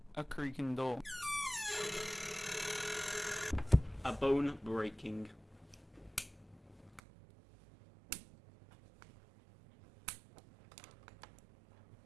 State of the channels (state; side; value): drops out; left; at 7.0 s